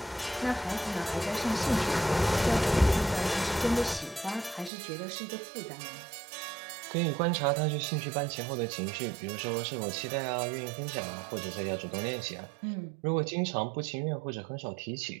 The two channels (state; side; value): drops out; left; at 4.7 s